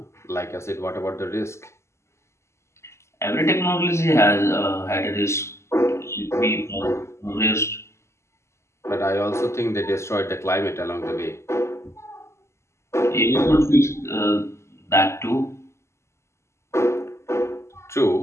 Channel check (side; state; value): right; late; 0.13 ms